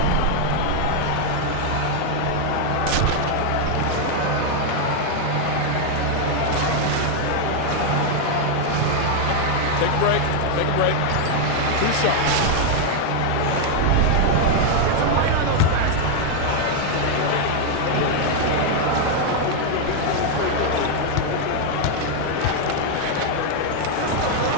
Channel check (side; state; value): both; different; correlation 0.00